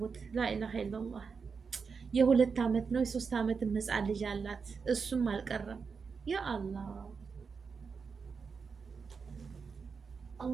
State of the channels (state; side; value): quieter; left; 5.4 dB